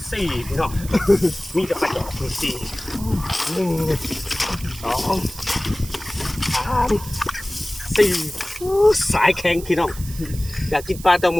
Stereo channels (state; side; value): noise; right; hiss, 14 dB below the sound